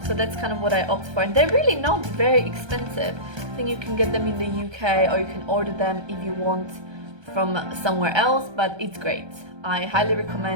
So that's kind of what I opt for, and they're really not very expensive. I think you can get them in the UK or you can order them if you want from somewhere else, but it's great. I highly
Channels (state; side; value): late; left; 1.3 ms